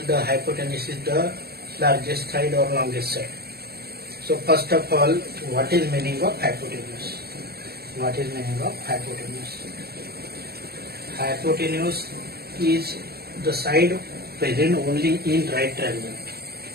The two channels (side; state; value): left; late; 0.46 ms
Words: the hypotenuse is the largest side or longest side. So first of all, what is meaning of hypotenuse? What is meaning of hypotenuse? Hypotenuse is the side present only in right triangle.